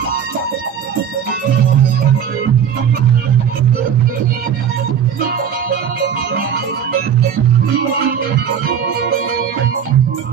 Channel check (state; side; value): quieter; left; 8.1 dB